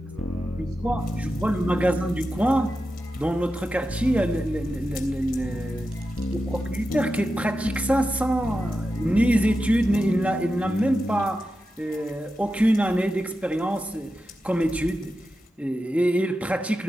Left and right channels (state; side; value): normal; both; correlation 0.90